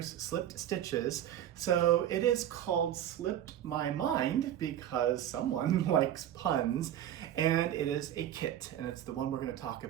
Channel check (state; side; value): quieter; left; 11.2 dB